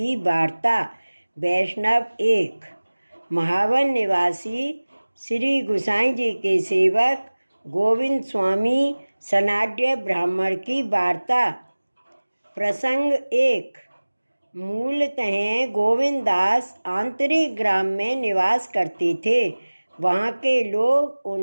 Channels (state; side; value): inverted; both; correlation -1.00